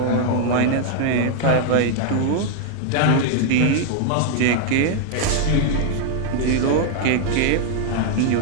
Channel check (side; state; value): both; different; correlation 0.00